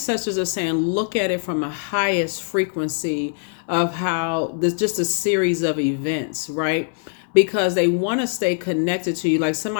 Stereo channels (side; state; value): right; silent; 64 dB below the other